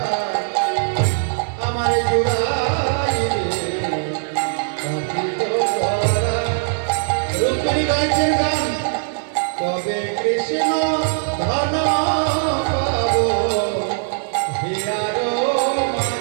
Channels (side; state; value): left; silent; digital silence